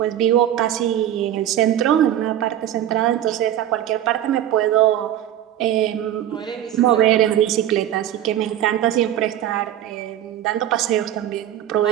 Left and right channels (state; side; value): quieter; left; 11.7 dB